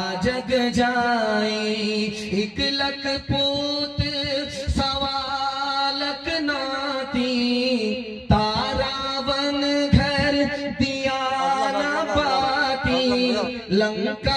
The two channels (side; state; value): both; identical; correlation 1.00